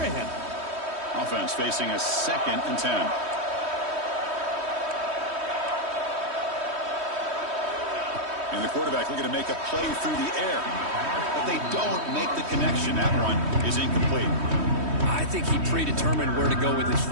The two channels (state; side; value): late; left; 3.1 ms